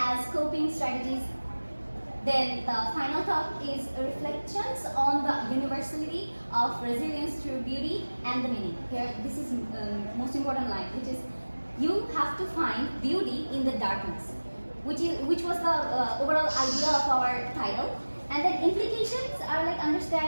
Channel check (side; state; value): both; inverted; correlation -1.00